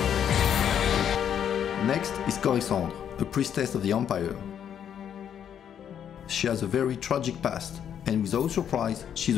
Next is Coruscant, a priestess of the Empire. She has a very tragic past, and without surprise, she's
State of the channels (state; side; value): quieter; right; 9.0 dB